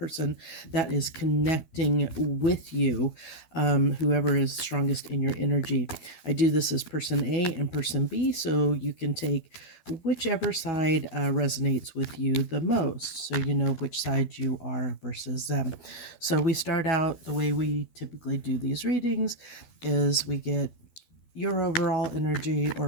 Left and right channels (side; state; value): right; late; 12 ms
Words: that is connecting with you, whoever is strongest in your energy. I do this as person A and person B, so you can take whichever side resonates with you the most, so you know which side you are versus them. So we start out the way we typically do these readings is we get your overall energy,